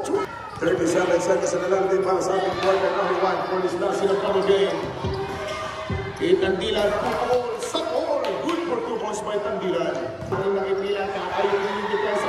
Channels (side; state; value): both; identical; correlation 1.00